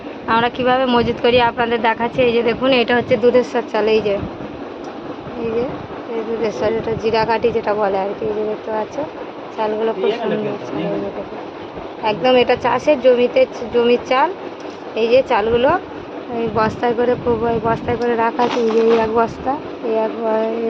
আমরা কিভাবে মজুত করি আপনাদের দেখাচ্ছি। এই যে দেখুন, এটা হচ্ছে দুধেশ্বর চাল। এই যে এই দুধেশ্বর, এটা জিরাকাঠি যেটা বলে আর কি। এই যে দেখতে পাচ্ছ, চালগুলো খুব সুন্দর চাল। এই যে দেখুন, একদম এটা চাষের জমির চাল। এই যে চালগুলো এই বস্তায় করে বস্তায় করে রাখা আছে। এই যে এই এক বস্তা, এই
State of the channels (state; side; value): identical; both; correlation 1.00